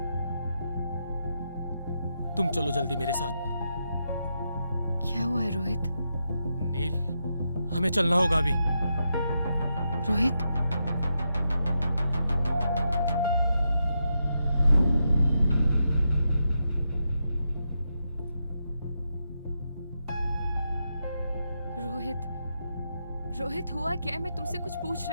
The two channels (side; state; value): both; inverted; correlation -0.84